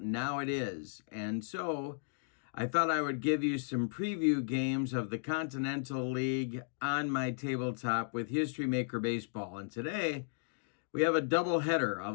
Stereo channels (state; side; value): silent; right; digital silence